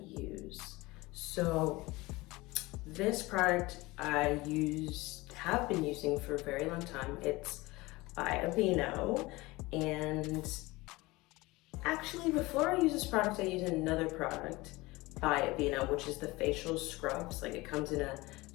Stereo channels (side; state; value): right; quieter; 21.4 dB